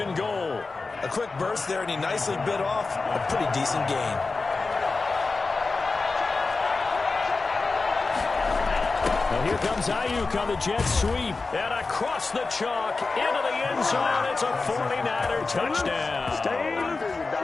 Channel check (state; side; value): quieter; right; 3.9 dB